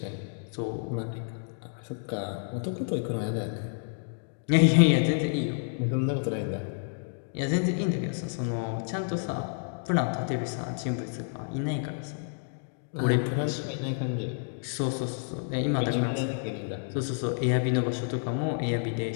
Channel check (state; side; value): silent; right; digital silence